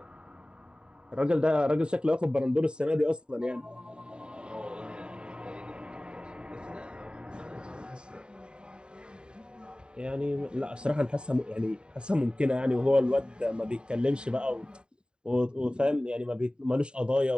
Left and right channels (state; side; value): late; left; 0.049 ms